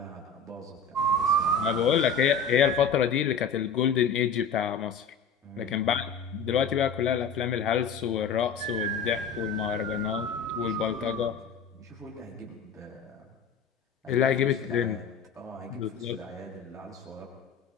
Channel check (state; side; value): quieter; right; 5.1 dB